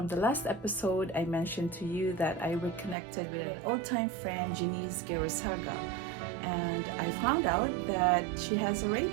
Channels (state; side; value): drops out; left; at 3.0 s